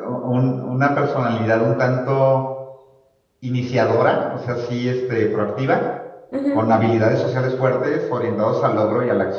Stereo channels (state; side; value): identical; both; correlation 1.00